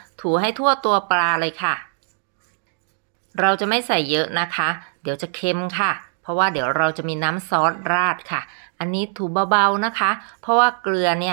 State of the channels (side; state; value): left; silent; 64 dB below the other